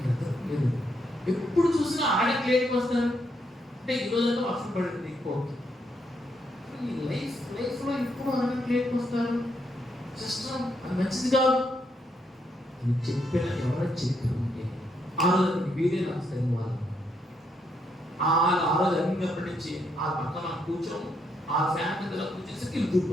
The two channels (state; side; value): normal; both; correlation 0.77